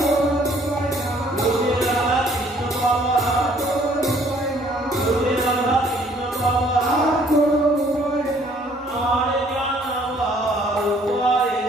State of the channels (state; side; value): normal; both; correlation 0.61